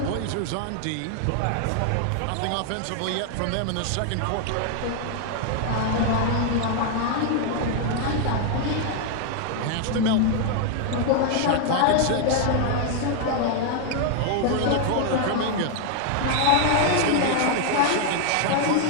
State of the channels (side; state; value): both; different; correlation 0.00